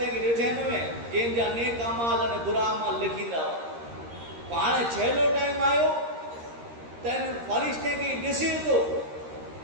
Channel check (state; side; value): late; left; 13 ms